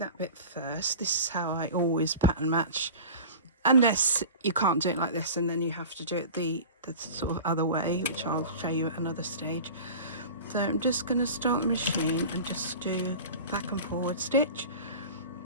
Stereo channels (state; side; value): inverted; both; correlation -0.36